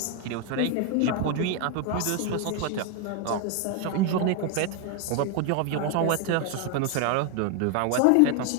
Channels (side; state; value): both; different; correlation 0.01